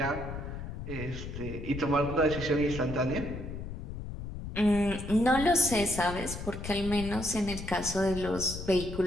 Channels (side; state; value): left; noise; rumble, 8 dB below the sound